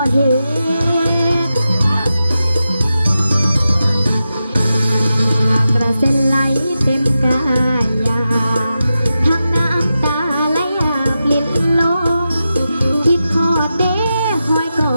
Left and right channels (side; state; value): both; inverted; correlation -0.90